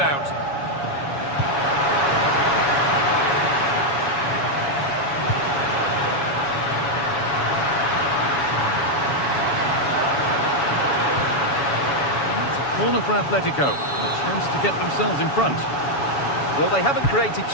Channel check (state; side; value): late; right; 7.1 ms